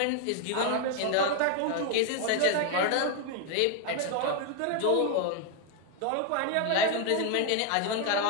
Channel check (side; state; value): both; different; correlation 0.00